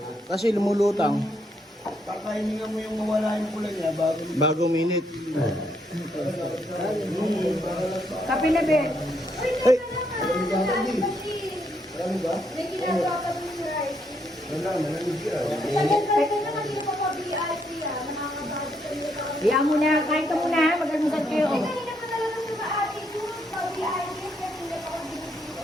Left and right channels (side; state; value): both; normal; correlation 0.75